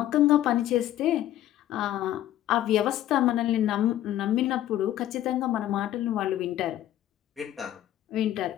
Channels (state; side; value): quieter; right; 12.9 dB